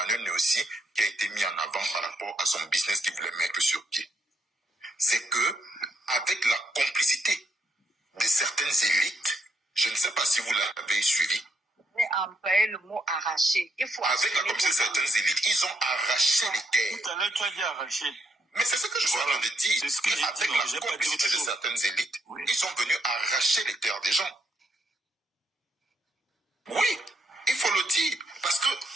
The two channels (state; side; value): normal; both; correlation 0.77